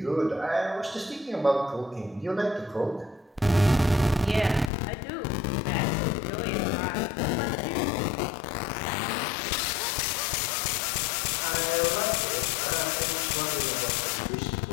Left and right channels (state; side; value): drops out; right; at 4.7 s